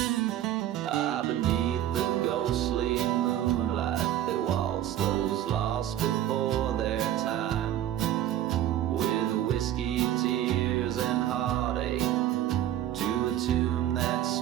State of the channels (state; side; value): quieter; left; 12.1 dB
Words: Ah, beneath the ghostly moonlight, they waltz those lost before their time, with whiskey, tears, and heartache, to a tune that